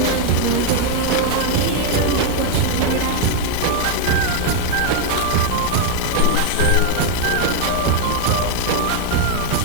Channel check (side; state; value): both; different; correlation 0.00